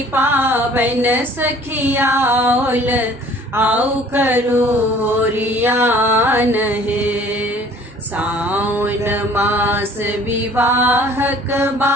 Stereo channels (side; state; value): both; normal; correlation 0.52